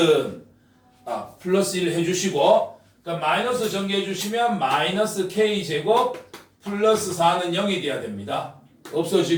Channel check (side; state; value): both; identical; correlation 1.00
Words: 플러스 1 해주시고 그러니까 마이너스 전개해 주시면 마이너스 k제곱 플러스 4는 0이 돼야 됩니다.